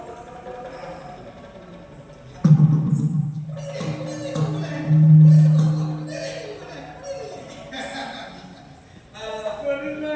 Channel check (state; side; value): identical; both; correlation 1.00